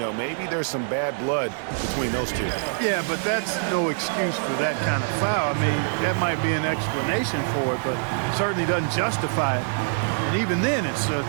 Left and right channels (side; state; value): left; silent; 62 dB below the other